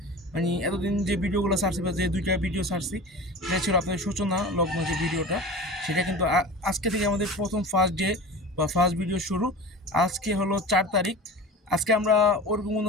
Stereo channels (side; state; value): both; normal; correlation 0.34